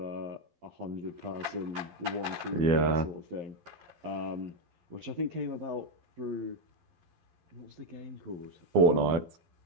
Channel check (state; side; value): late; left; 12 ms